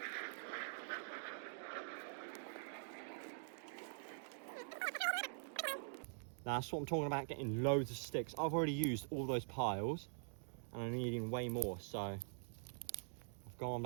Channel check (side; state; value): left; silent; digital silence